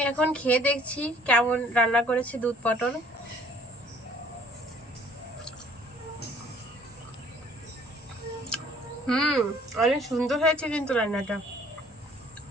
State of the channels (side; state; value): both; normal; correlation 0.56